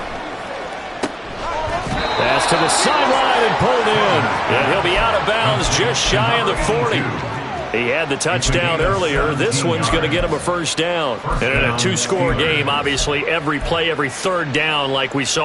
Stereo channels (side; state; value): both; identical; correlation 1.00